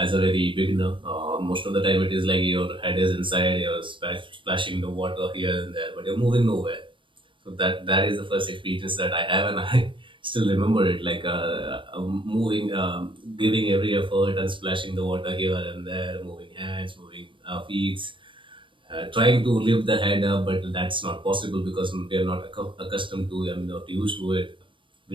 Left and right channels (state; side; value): late; left; 0.24 ms